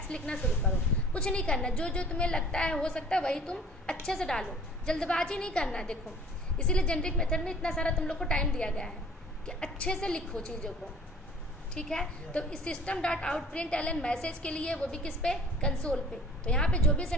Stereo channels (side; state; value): both; normal; correlation 0.50